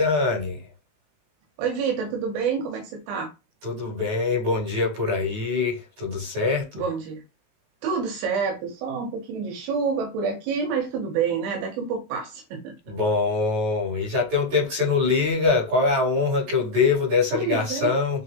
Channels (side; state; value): left; late; 19 ms